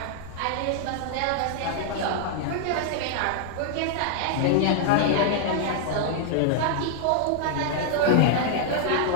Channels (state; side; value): different; both; correlation -0.01